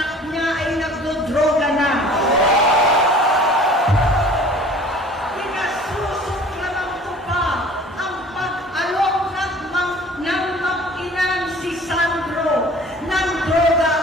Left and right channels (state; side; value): normal; both; correlation 0.47